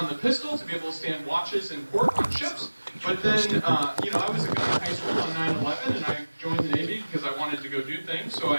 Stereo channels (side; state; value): both; inverted; correlation -1.00